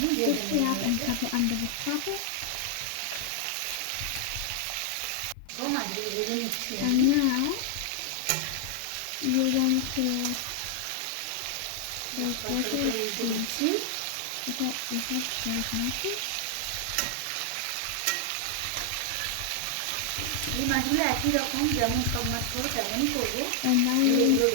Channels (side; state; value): both; different; correlation 0.00